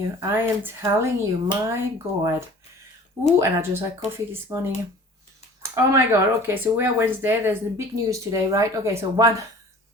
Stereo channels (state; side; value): normal; both; correlation 0.46